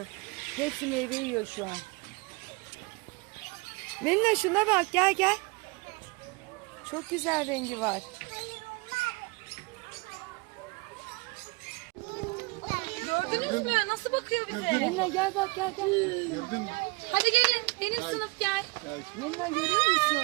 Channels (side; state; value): left; quieter; 26.8 dB